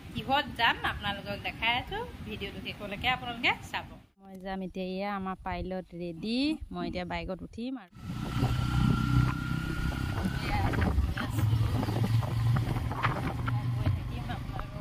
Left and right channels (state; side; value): identical; both; correlation 1.00